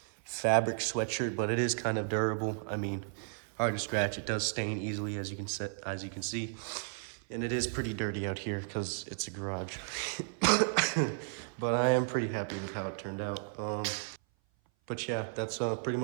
fabric sweatshirt, but it is kind of durable. I mean, hard to scratch. It does stain easily, as you can see. And it is pretty dirty out here because it's a garage. But I am pretty happy with how it turned out. But yeah, that's pretty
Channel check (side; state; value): left; silent; 55 dB below the other